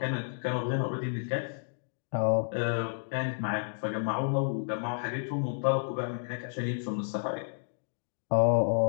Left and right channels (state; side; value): silent; right; digital silence